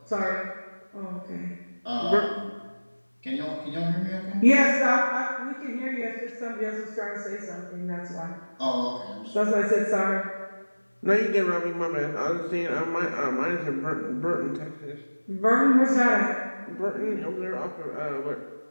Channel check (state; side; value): inverted; both; correlation -1.00